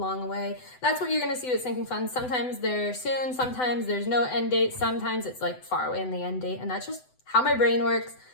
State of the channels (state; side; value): late; right; 7.9 ms